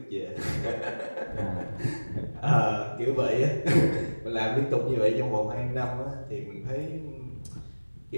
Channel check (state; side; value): inverted; both; correlation -1.00